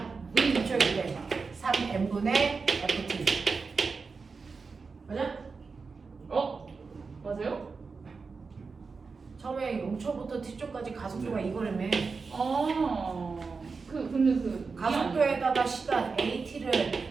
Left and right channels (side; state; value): left; quieter; 4.7 dB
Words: V초일 때 3n분의 ft. 맞아? 맞아요? 처음에 0초부터 t초까지 가속도가 이거라며. 근데 그 가속도에다가 시간 AT를